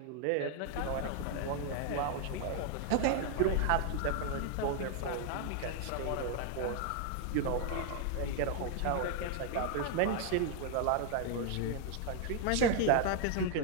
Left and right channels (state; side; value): different; both; correlation 0.01